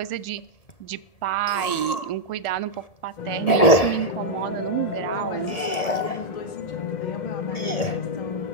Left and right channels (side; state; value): right; late; 1.7 ms